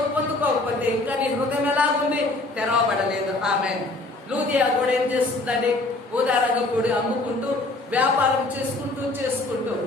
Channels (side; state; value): right; quieter; 3.0 dB